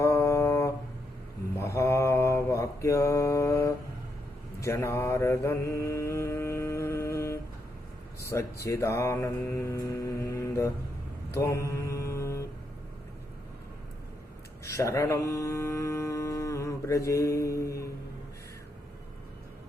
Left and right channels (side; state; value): both; normal; correlation 0.80